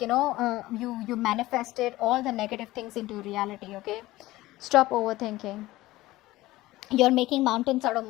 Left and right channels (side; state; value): right; quieter; 17.7 dB